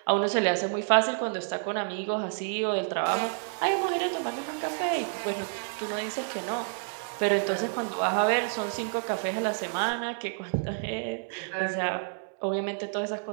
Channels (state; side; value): silent; left; 58 dB below the other